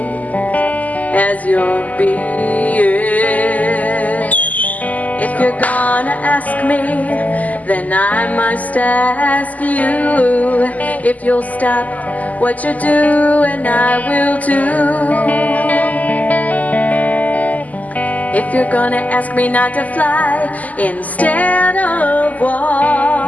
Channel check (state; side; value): late; right; 0.077 ms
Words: as you're being. If you're gonna ask me, then I must ask you if you'll stop what you do, and I will too. If you're gonna ask me not to fly instead of